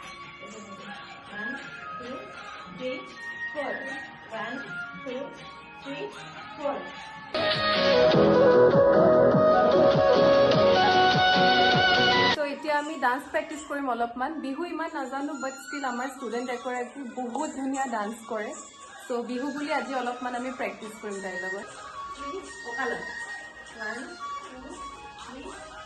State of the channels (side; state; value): both; identical; correlation 1.00